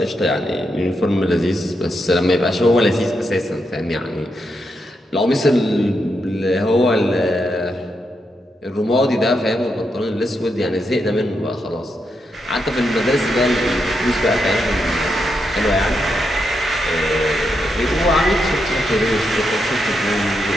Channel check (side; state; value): both; normal; correlation 0.83